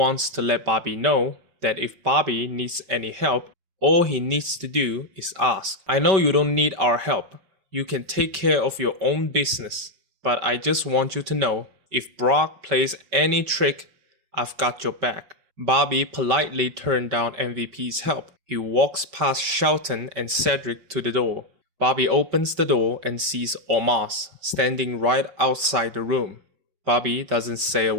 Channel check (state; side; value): late; left; 5.2 ms